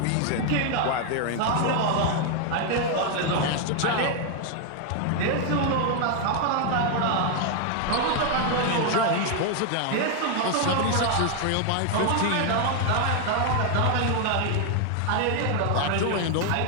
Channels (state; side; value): different; both; correlation 0.00